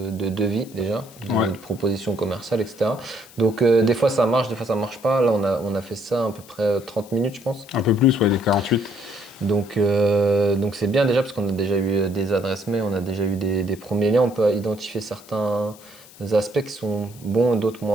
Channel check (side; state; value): left; noise; hiss, 22 dB below the sound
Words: devis déjà, de proposition commerciale, etc. Donc, des fois, ça marche, des fois, ça marche pas. Là, on a fait ça à peu près 30 minutes, je pense. Un peu plus, ouais, les 48. Donc c'est bien déjà parce qu'on a déjà eu des adresses mail, on a déjà eu des premiers liens, on peut identifier certains aspects qui sont bons et d'autres